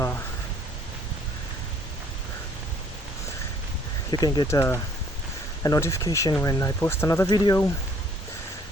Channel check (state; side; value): normal; both; correlation 0.62